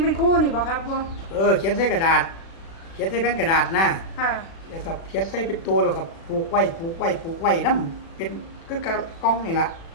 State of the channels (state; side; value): late; right; 36 ms